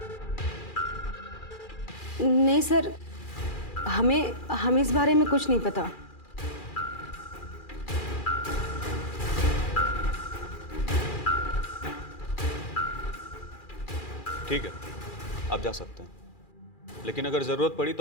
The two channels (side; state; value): right; late; 2.4 ms